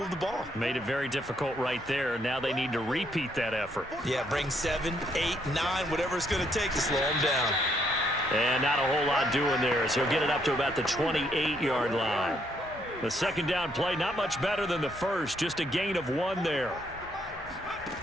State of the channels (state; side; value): normal; both; correlation 0.72